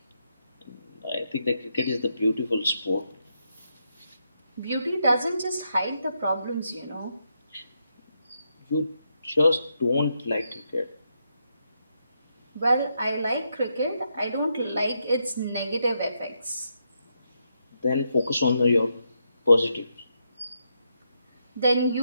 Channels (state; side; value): inverted; both; correlation -0.81